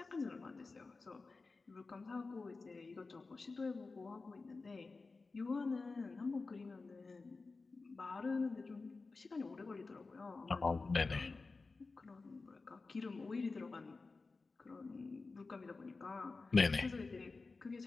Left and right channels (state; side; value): quieter; right; 3.9 dB